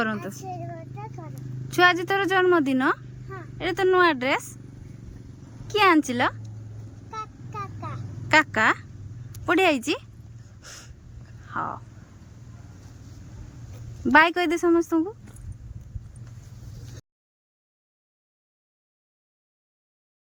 छुआ आज तोर जन्मदिन ये तो नुआ ड्रेस किए आंचिल काका बढ़िया आई हाँ बाय कह दे समस्त को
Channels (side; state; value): both; identical; correlation 1.00